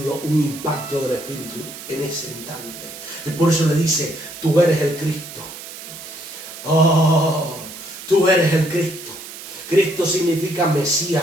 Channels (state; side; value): noise; right; hiss, 13 dB below the sound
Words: un impacto del Espíritu en ese instante. Y por eso le dice, tú eres el Cristo. Oh, tú eres el Cristo. Cristo significa